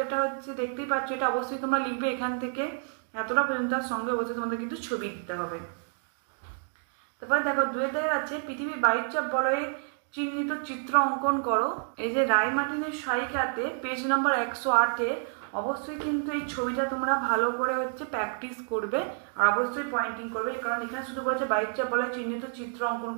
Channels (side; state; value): left; silent; 58 dB below the other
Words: এটা হচ্ছে দেখতেই পাচ্ছ, এটা অবশ্যই তোমরা লিখবে এখান থেকে এতটা পর্যন্ত, সঙ্গে অবশ্যই তোমাদের কিন্তু ছবি দিতে হবে। তারপরে দেখো 2-এর দাগের আছে পৃথিবীর বায়ুচাপ বলয়ে চিহ্নিত চিত্র অঙ্কন করো। এই যে রায় মার্টিনের সহায়িকাতে পেজ নাম্বার 108-এ অবশ্যই কিন্তু এই ছবিটা তোমরা ভালো করে হচ্ছে প্র্যাকটিস করবে, আর অবশ্যই পয়েন্টিং করবে, কারণ এখানে শুধু বলছে বায়ুচাপ বলয়ে চিহ্নিত চিত্র অঙ্কন